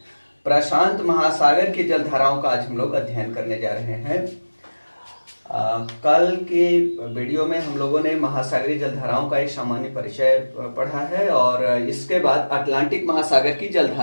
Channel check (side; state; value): both; inverted; correlation -1.00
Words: प्रशांत महासागर की जलधाराओं का आज हम लोग अध्ययन करने जा रहे हैं। कल के वीडियो में हम लोगों ने महासागरीय जलधाराओं का एक सामान्य परिचय पढ़ा है और इसके बाद अटलांटिक महासागर की